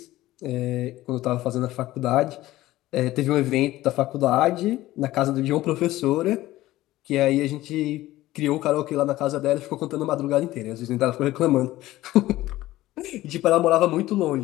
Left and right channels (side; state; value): right; quieter; 16.3 dB